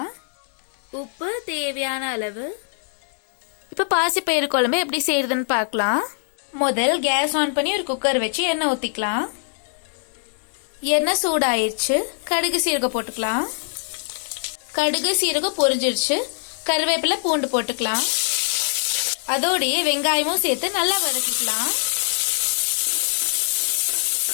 உப்பு தேவையான அளவு. இப்ப பாசிப்பயிறு குழம்பு எப்படி செய்யறதுன்னு பார்க்கலாம். முதல் கேஸ் ஆன் பண்ணி ஒரு குக்கர் வச்சு எண்ணெய் ஊத்திக்கலாம். எண்ணெய் சூடாயிருச்சு. கடுகு சீரகம் போட்டுக்கலாம். கடுகு சீரகம் பொரிஞ்சிருச்சு. கருவேப்பிலை பூண்டு போட்டுக்கலாம். அதோடய வெங்காயமும் சேர்த்து நல்லா வதக்கிக்கலாம்.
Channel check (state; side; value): silent; right; 64 dB below the other